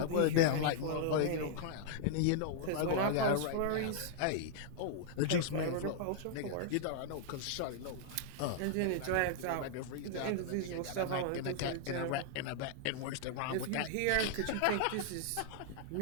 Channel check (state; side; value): different; both; correlation -0.01